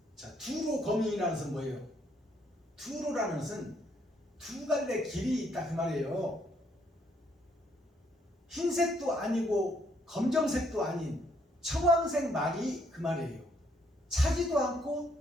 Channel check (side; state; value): both; normal; correlation 0.70